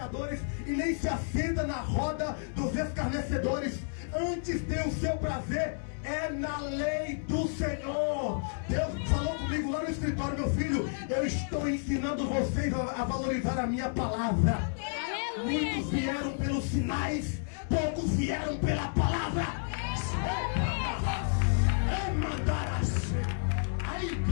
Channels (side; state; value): right; silent; digital silence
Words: e nem se assenta na roda dos escarnecedores. Antes tem o seu prazer é na lei do Senhor. Deus falou comigo lá no escritório: meu filho, eu estou ensinando vocês a valorizar a minha palavra. Aleluia, Muitos vieram pelos sinais, poucos vieram pela palavra. Aí,